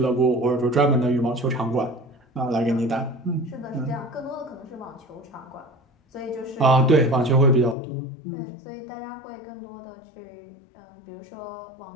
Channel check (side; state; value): right; drops out; at 7.8 s